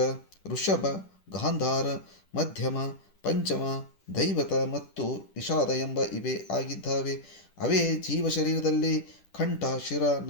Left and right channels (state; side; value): late; right; 10 ms